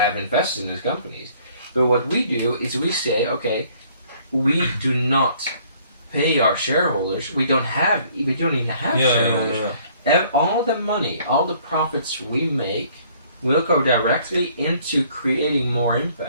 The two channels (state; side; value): inverted; both; correlation -0.60